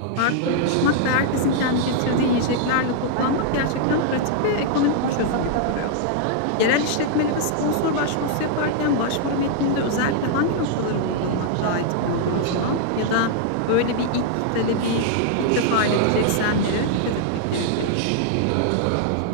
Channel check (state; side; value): different; both; correlation -0.01